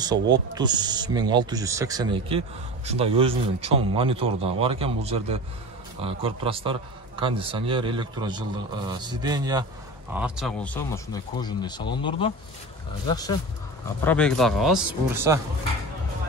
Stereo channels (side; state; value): both; normal; correlation 0.31